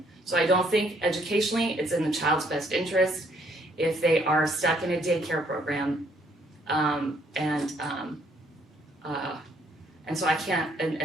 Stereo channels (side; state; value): both; normal; correlation 0.67